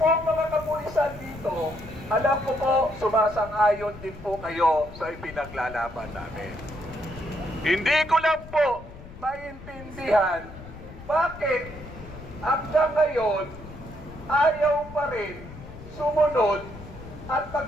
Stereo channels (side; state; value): left; noise; rumble, 15 dB below the sound